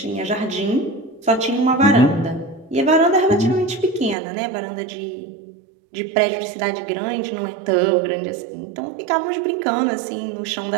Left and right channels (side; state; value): left; drops out; at 4.2 s